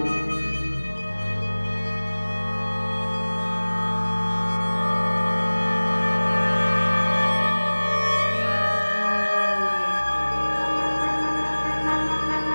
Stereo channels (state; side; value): inverted; both; correlation -1.00